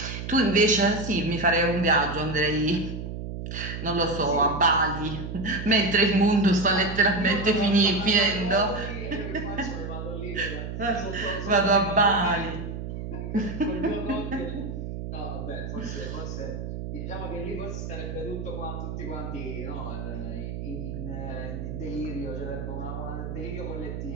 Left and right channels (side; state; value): right; noise; hum, 6 dB below the sound